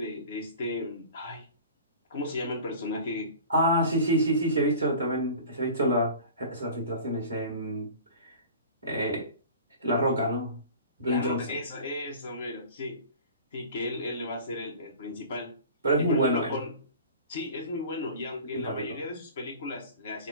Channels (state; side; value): inverted; both; correlation -0.40